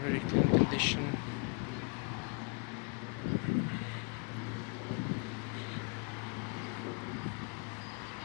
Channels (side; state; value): right; quieter; 35.4 dB